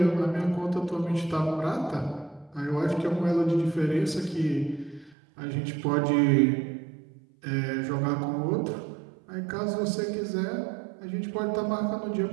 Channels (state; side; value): drops out; left; at 5.2 s